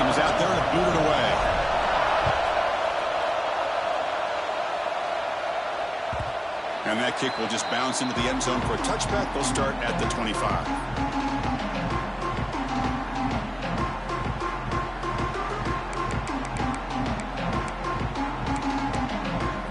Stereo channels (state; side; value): identical; both; correlation 1.00